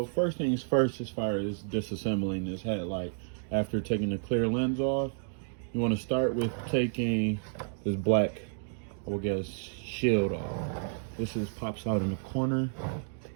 first things first, as far as disassembling this headlight, after taking the clear lens off, you want to start with taking this black, I would guess, shield off. This pops out in the corner.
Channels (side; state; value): left; silent; digital silence